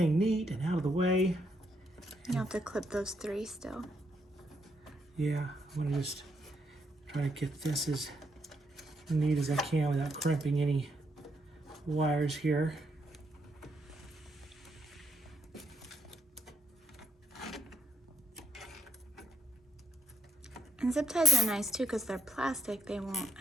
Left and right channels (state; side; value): normal; both; correlation 0.73